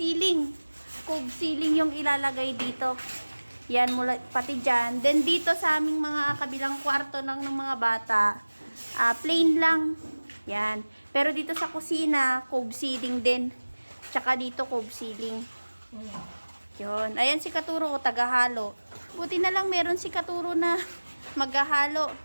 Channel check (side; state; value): both; inverted; correlation -1.00